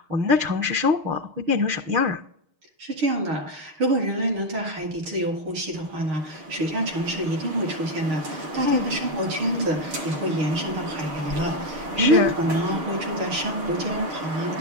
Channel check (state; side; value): late; left; 6.4 ms